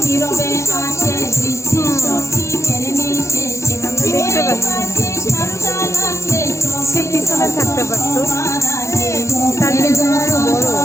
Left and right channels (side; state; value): right; late; 0.14 ms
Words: নীরবে আসে, দৃষ্টি শক্তি মেরে মিশে, দেখতে পাচ্ছি সে পিছনে থাকতে পারতো, তার জন্য বড়